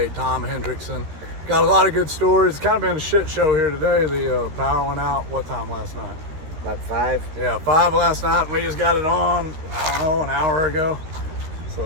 Tom Hendrixson. Got a lot of good stories. It's kind of been a shit show here today. The power went out, what time last night? About 5. Yeah, 5 last night, and we just got it on, I don't know, an hour ago.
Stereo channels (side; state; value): left; late; 13 ms